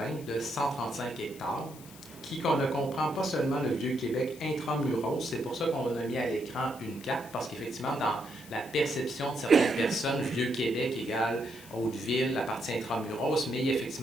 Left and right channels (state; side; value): noise; left; hiss, 19 dB below the sound